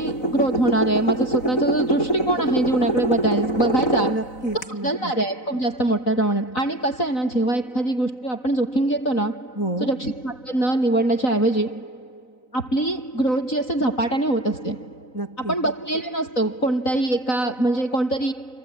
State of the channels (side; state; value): right; late; 4.0 ms